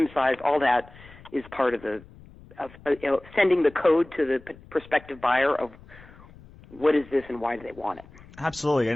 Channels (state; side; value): noise; left; rumble, 22 dB below the sound